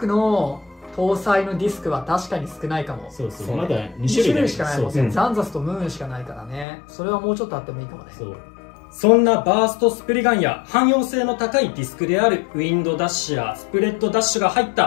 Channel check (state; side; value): drops out; right; at 6.7 s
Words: の搭載のディスクは確かに少ないかも。そうそう、まだ2種類しかないもんね。ザンザスとムーンしかないからね。それはもうちょっとあってもいいかもね。そんなバーストスプリガンや汎用性の高いディスクであるウィンドダッシュやスプレッドダッシュが入っ